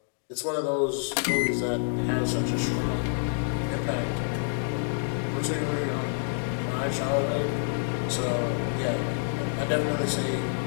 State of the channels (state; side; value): silent; right; 60 dB below the other